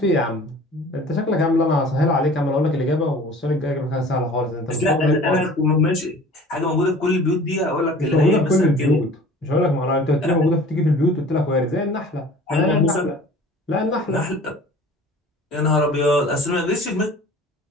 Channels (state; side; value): normal; both; correlation 0.45